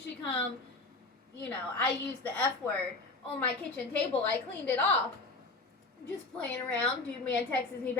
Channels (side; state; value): right; quieter; 3.3 dB